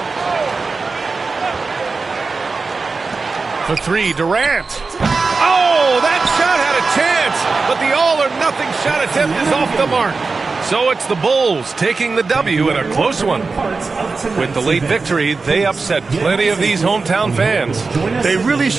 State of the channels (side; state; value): left; quieter; 4.2 dB